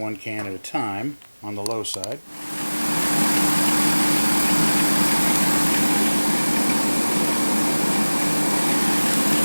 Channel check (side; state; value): both; inverted; correlation -1.00